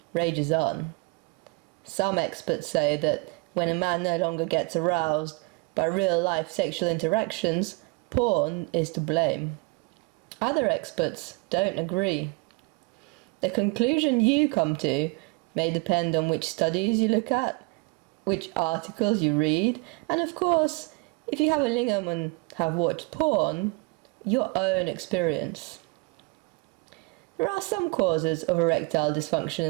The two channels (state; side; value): quieter; left; 28.2 dB